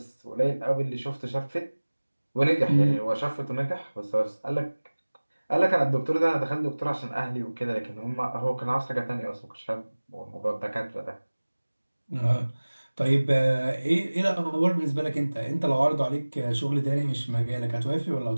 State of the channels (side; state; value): both; inverted; correlation -1.00